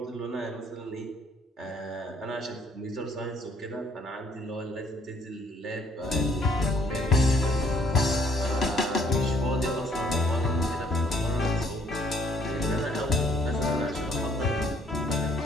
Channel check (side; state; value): both; normal; correlation 0.64